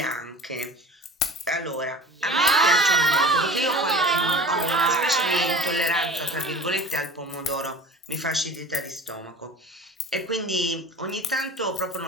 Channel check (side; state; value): both; normal; correlation 0.40